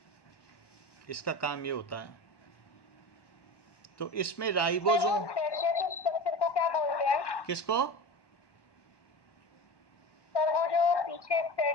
इसका काम ये होता है। तो इसमें राइबोसोम स्ट्रक्चर को क्या बोलते हैं? किसको? सर वो जो पीछे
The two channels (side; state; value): right; late; 1.1 ms